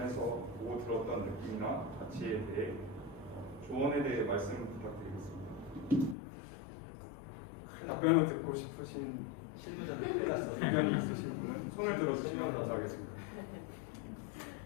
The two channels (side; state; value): right; drops out; at 6.2 s